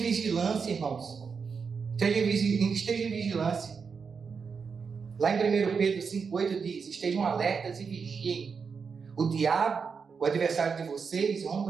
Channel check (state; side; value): quieter; left; 5.7 dB